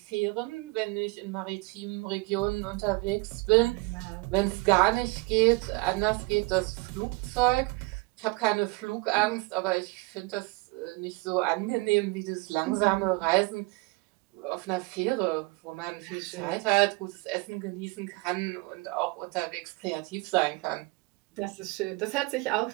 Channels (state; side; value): quieter; left; 26.2 dB